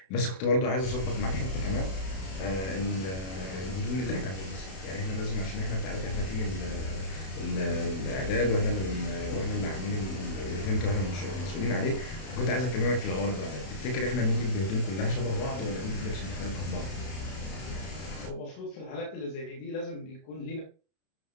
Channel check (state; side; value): late; right; 32 ms